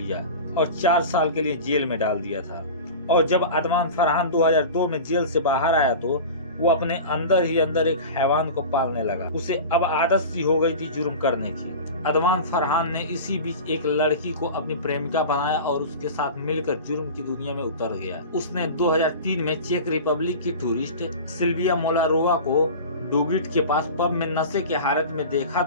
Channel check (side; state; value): both; inverted; correlation -0.33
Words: और 4 साल के लिए जेल में डाल दिया था। और जब अदवान फरहान 2002 में जेल से बाहर आया तो वो अपने अंदर ही अंदर एक हैवान को पालने लगा। उसे अब आदत सी हो गई थी जुर्म करने की। अदवान फरहान ने इसी बीच एक लड़की को अपनी प्रेमिका बनाया और उसके साथ मिलकर जुर्म की दुनिया में उतर गया। उसने 2003 में चेक रिपब्लिक की टूरिस्ट सिल्विया मोलारोवा को डोगिट के पास पब में नशे के हालत में देखा